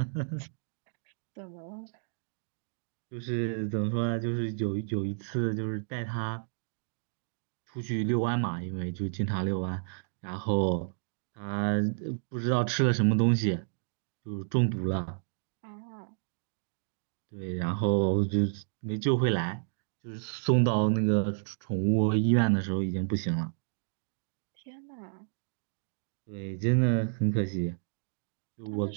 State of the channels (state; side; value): silent; left; digital silence